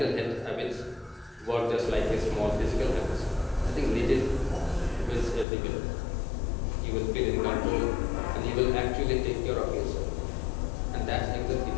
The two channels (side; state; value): right; drops out; at 5.5 s